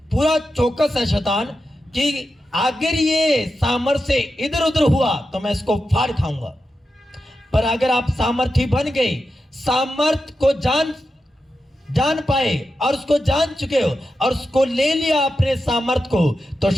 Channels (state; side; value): normal; both; correlation 0.89